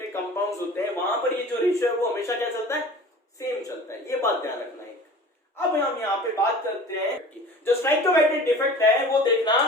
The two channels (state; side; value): normal; both; correlation 0.41